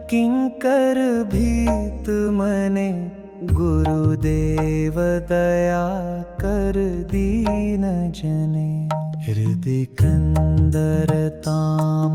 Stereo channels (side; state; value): both; identical; correlation 1.00